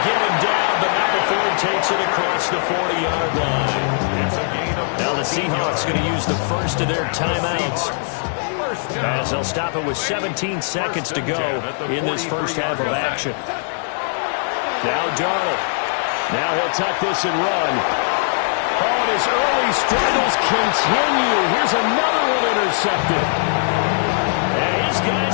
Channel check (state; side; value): silent; right; digital silence